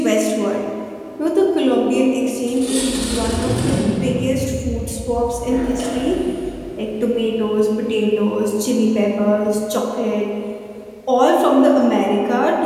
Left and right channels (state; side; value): identical; both; correlation 1.00